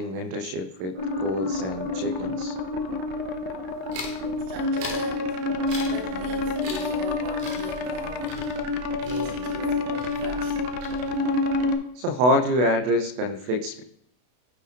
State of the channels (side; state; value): left; late; 32 ms